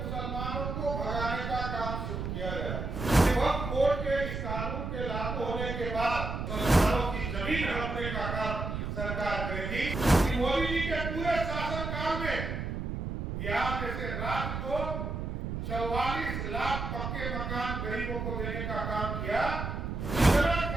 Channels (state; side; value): noise; right; rumble, 4 dB below the sound